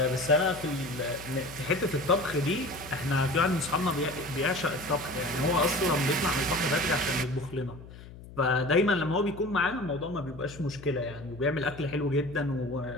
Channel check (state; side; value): noise; left; hum, 16 dB below the sound